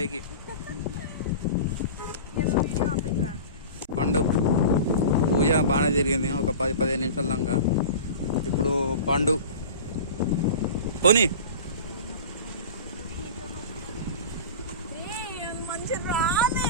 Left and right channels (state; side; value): inverted; both; correlation -0.34